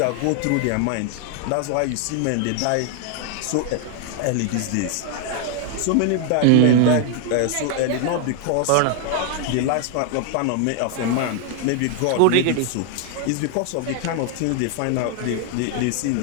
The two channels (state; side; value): different; both; correlation 0.00